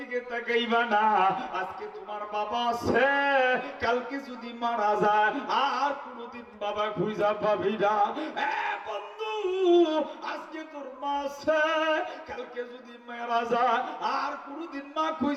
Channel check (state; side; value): identical; both; correlation 1.00